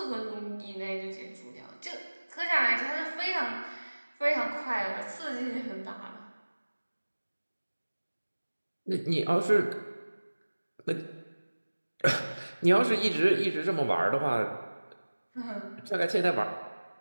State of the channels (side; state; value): both; inverted; correlation -1.00